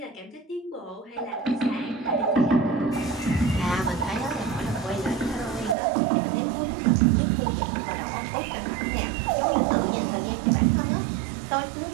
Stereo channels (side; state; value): left; drops out; at 5.8 s